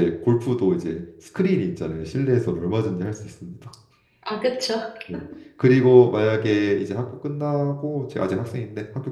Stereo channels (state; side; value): identical; both; correlation 1.00